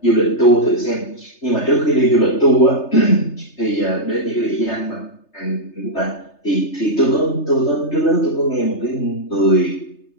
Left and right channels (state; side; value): late; right; 3.3 ms